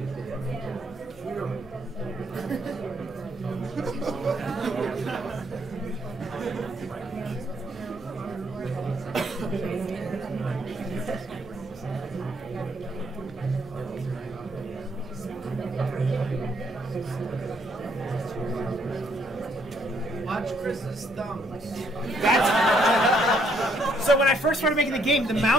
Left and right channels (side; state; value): both; normal; correlation 0.70